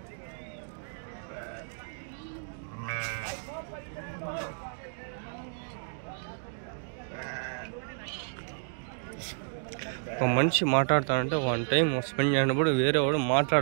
ఒక మనిషి మాట్లాడతానంటే 1 టైం స్పెండ్ చేయనప్పుడు వేరే వాడు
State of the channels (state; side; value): silent; left; digital silence